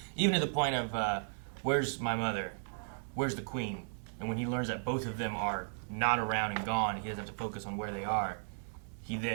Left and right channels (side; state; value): left; silent; digital silence